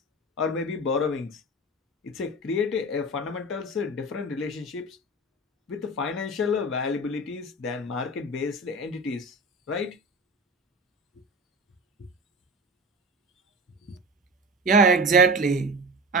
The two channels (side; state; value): both; normal; correlation 0.31